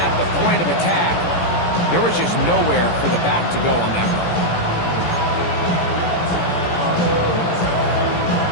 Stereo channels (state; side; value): late; right; 17 ms